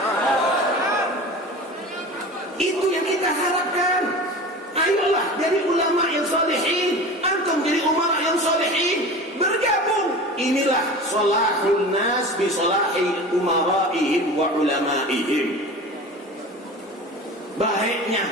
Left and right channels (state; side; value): normal; both; correlation 0.35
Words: Itu yang kita harapkan. Ayolah jadi ulama yang solehin, antum jadi umara yang solehin, bergabung. Inilah solahul nas bi solahi umaraihim wa ulamaihim.